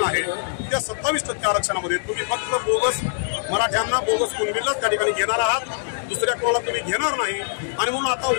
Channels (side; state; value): right; silent; digital silence